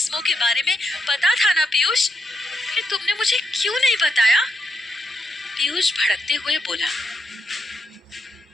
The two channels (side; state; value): both; normal; correlation 0.81